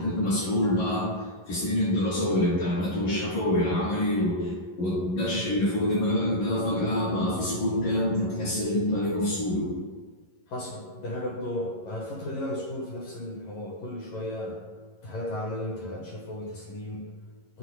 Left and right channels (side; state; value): right; late; 11 ms